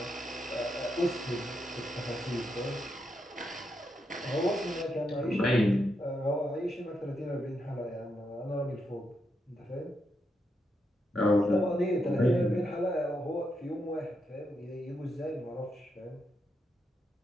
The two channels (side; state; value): both; normal; correlation 0.82